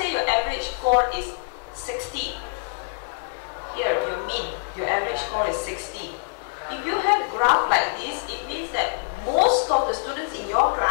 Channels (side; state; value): right; silent; digital silence